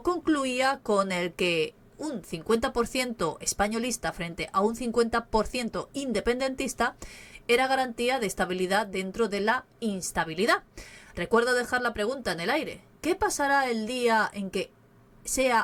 concluía con el que un 50% españolista frente a un 50% independentista era garantía de estabilidad dentro de la instabilidad. Recuerdo dejar la pregunta en el aire: ¿qué pasará el día en que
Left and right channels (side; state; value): both; identical; correlation 1.00